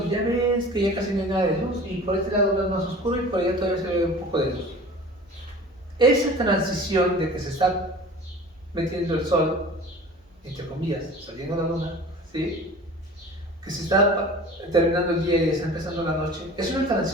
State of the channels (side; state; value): both; normal; correlation 0.41